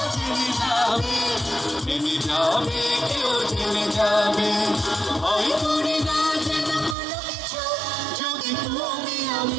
জেনে যাবে, জেনে যাবে, কেউ জেনে যাবে। ভয় করি না যেন কোনো কিছু, যদি তুমি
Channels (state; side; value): drops out; left; at 7.0 s